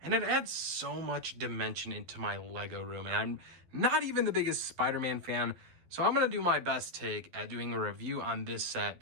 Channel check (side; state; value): left; late; 12 ms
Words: and it adds so much dimension into my Lego room. And I'm not even the biggest Spider-Man fan, so I'm gonna do my best take at doing a review on this set